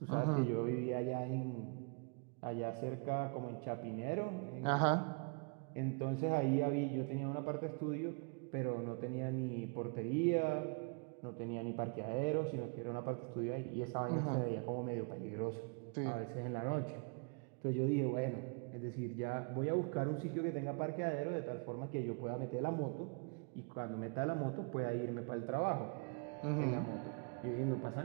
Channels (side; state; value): left; quieter; 35.7 dB